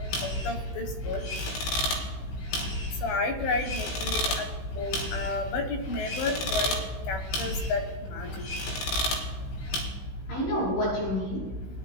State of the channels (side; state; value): right; late; 16 ms